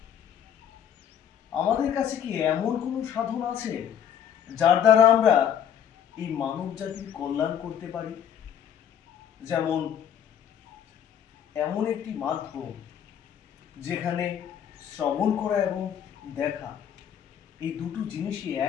আমাদের কাছে কি এমন কোনো সাধন আছে যার দ্বারা আমরা এই মানব জাতির কল্যাণ করতে পারি? যেমন এমন একটি মাধ্যম যেখানে শ্রবণ করা এবং দেখা, এই দুটো জিনিসই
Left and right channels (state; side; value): quieter; right; 9.1 dB